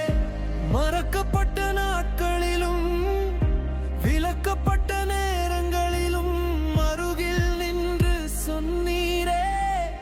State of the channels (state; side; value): identical; both; correlation 1.00